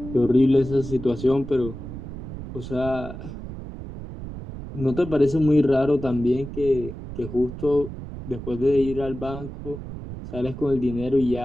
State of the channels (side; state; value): right; noise; rumble, 10 dB below the sound